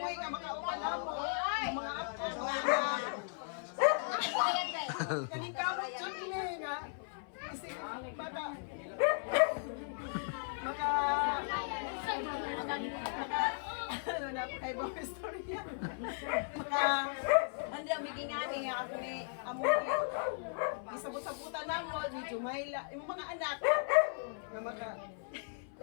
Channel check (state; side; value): silent; right; 53 dB below the other